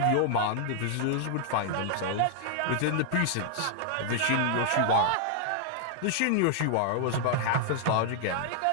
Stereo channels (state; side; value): different; both; correlation -0.01